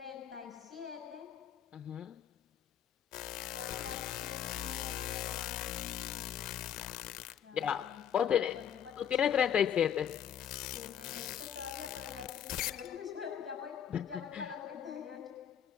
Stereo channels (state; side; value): quieter; right; 9.0 dB